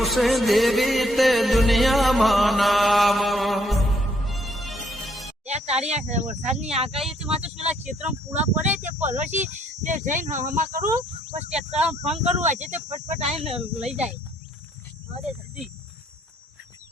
છે દેવી તે દુનિયામાં નામ. તારી આ વરસાદની આગાહી થી માત્ર પેલા ક્ષેત્રમાં પૂરા પડે તે પરોશી તે જઈને હમા કરું પછી ટ્રેક્ટર ફોન કરું આજે તે ફટફટ આવીને લઈ જાય. અરે જલ્દી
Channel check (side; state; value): both; normal; correlation 0.68